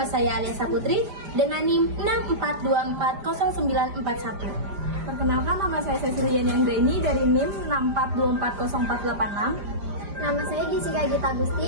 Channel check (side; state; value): left; late; 5.0 ms